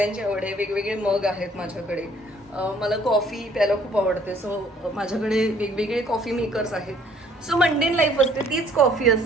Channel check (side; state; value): both; normal; correlation 0.60